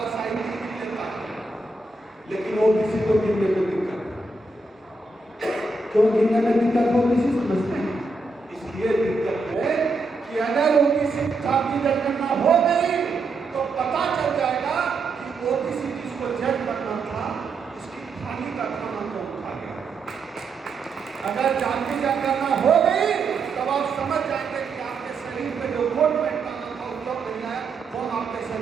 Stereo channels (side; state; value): left; quieter; 3.5 dB